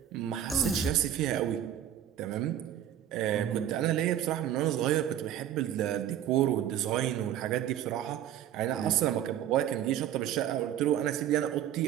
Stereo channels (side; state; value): left; quieter; 10.8 dB